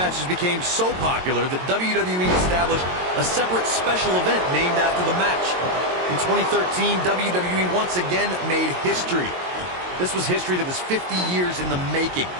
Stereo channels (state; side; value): late; left; 22 ms